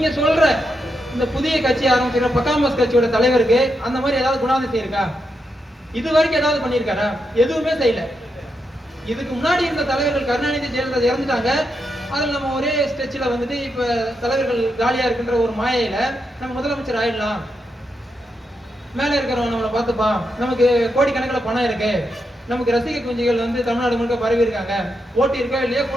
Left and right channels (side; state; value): both; normal; correlation 0.84